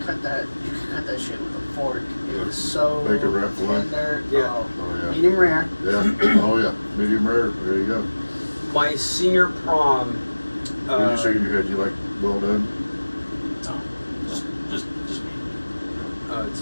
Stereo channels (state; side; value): inverted; both; correlation -1.00